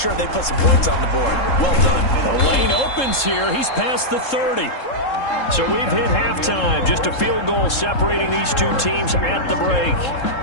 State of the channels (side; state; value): right; late; 3.7 ms